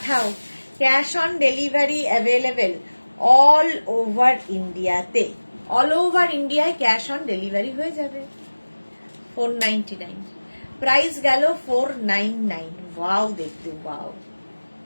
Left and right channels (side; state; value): both; inverted; correlation -1.00